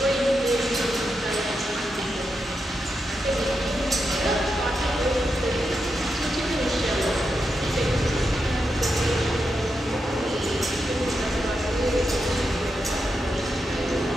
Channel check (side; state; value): both; normal; correlation 0.86